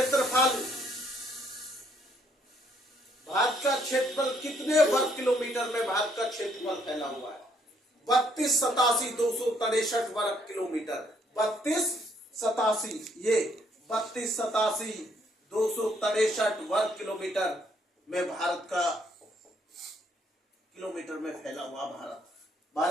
क्षेत्रफल कितने वर्ग किलोमीटर में भारत का क्षेत्रफल फैला हुआ है? 3287,263 वर्ग किलोमीटर। 3287,263 वर्ग किलोमीटर में भारत का किलोमीटर में फैला हुआ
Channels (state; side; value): normal; both; correlation 0.69